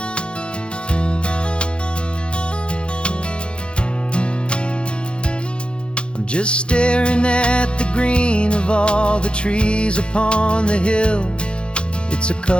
I'm just staring at the green of all the trees upon the hill. It's a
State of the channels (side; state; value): right; late; 0.056 ms